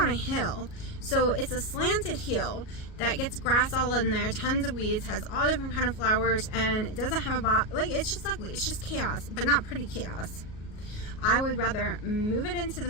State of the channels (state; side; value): late; right; 38 ms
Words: a hill, so it's a slanted hill that gets grass all in there, tons of weeds, has all different kind of flowers, and it doesn't have a like, it's just ugly. It's just chaos, but not pretty chaos. I would rather move it into the